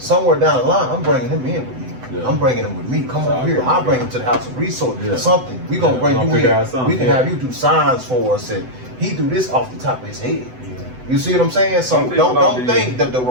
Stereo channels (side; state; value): left; late; 7.9 ms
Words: down the line, I'm bringing him in with me. I'm bringing him with me. Come over here. I'll bring him to the House of Resources. Something. We gonna bring you in. We can have you do signs for us, and he do this off the top of his head. You see what I'm saying? So don't think that the